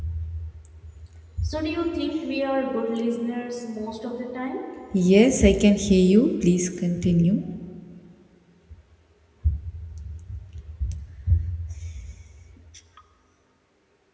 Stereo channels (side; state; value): both; identical; correlation 1.00